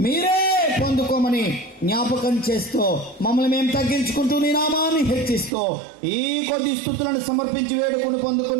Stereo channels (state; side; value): drops out; left; at 5.5 s